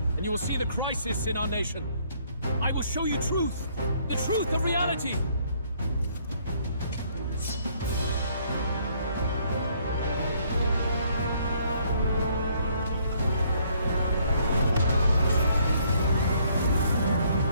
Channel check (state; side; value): inverted; both; correlation -0.66